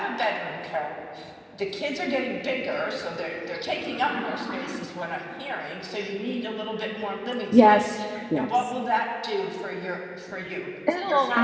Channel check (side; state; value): both; identical; correlation 1.00